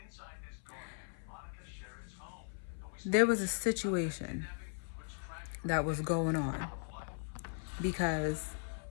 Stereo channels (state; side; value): silent; right; 52 dB below the other